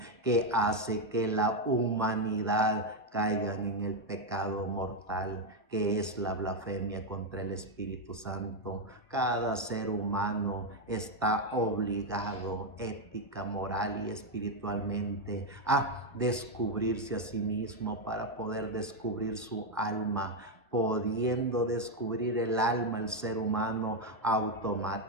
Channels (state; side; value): normal; both; correlation 0.04